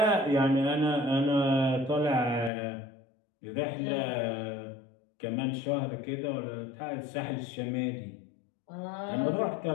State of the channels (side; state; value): right; drops out; at 2.5 s